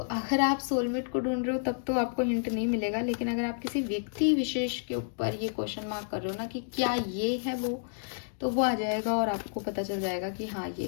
अगर आप सोलमेट को ढूंढ रहे हो तब तो आपको हिंट नहीं मिलेगा, लेकिन अगर आप किसी व्यक्ति विशेष के ऊपर ये क्वेश्चन मार्क कर रहे हो ना कि क्या ये है वो, तो वो आ जाएगा और आपको पता चल जाएगा कि हाँ ये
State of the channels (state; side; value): silent; right; digital silence